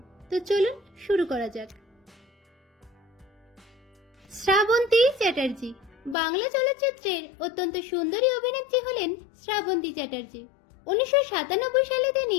তো চলুন শুরু করা যাক। শ্রাবন্তী চ্যাটার্জি। বাংলা চলচ্চিত্রের অত্যন্ত সুন্দরী অভিনেত্রী হলেন শ্রাবন্তী চ্যাটার্জি। 1997 সালে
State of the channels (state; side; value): drops out; right; at 6.2 s